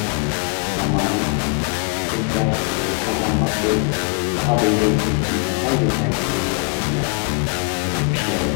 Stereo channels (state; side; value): quieter; right; 35.5 dB